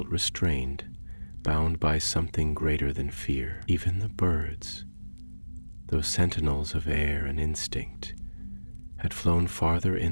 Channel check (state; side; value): inverted; both; correlation -1.00